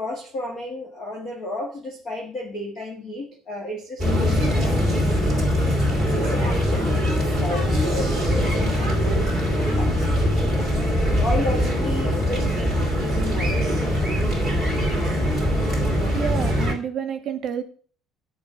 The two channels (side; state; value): both; normal; correlation 0.75